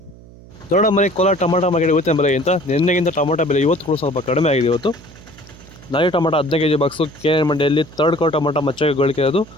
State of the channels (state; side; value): noise; right; hum, 21 dB below the sound